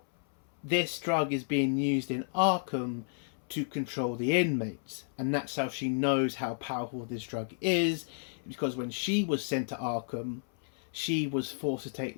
this drug is being used in Arkham to control the inmates, and that's how she knows how powerful this drug is, because when she was sent to Arkham, she was forced to take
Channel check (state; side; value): silent; right; 56 dB below the other